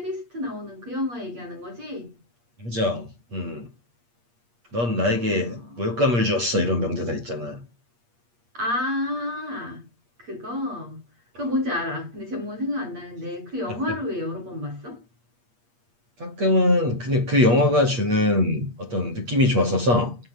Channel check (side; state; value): left; late; 8.5 ms